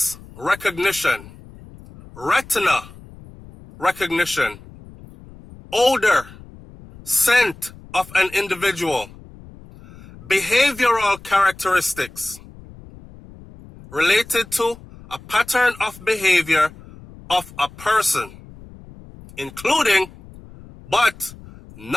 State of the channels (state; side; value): noise; left; rumble, 20 dB below the sound